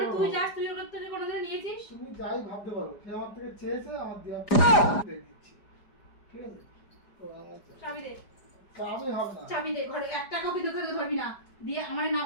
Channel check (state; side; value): late; right; 4.9 ms